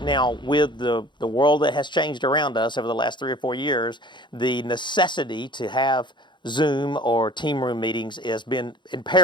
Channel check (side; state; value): right; late; 0.22 ms